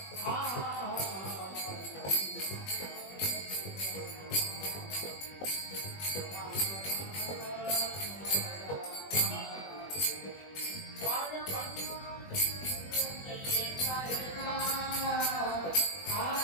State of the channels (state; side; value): late; right; 21 ms